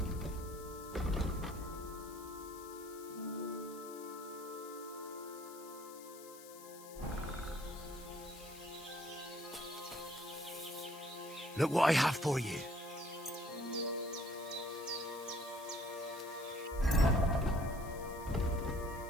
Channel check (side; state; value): left; noise; hiss, 17 dB below the sound